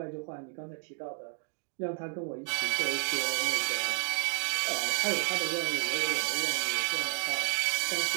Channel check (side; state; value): left; silent; 57 dB below the other